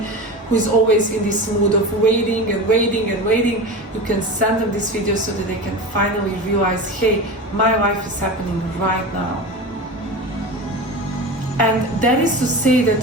who is always in this mood of waiting and waiting and waiting, you can send them this video so that they can finally realize, hey, my life is happening right now. And that is to say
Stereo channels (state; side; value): normal; both; correlation 0.27